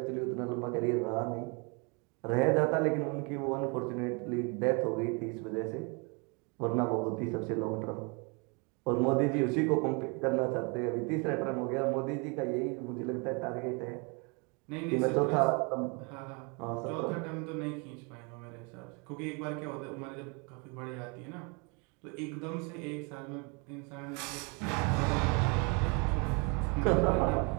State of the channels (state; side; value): quieter; left; 32.3 dB